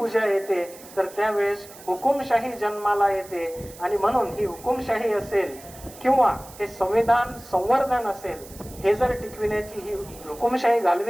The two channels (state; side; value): noise; right; hiss, 19 dB below the sound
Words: येते तर त्यावेळेस हुकुमशाही जन्माला येते. आणि म्हणून ही हुकुमशाही असेल किंवा हे संविधान संवर्धन असेल, हे जर टिकविण्याची, ही हुकुमशाही